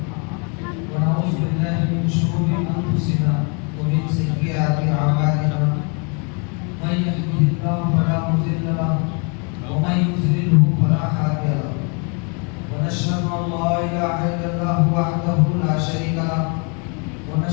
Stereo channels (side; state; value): right; quieter; 35.3 dB